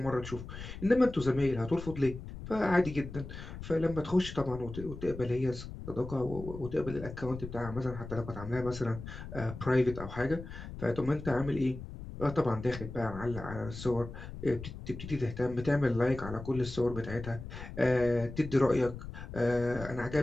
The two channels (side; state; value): left; noise; rumble, 11 dB below the sound